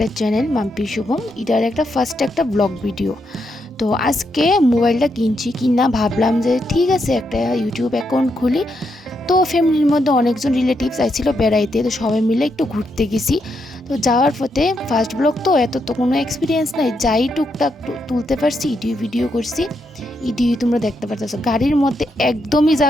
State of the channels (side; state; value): both; normal; correlation 0.81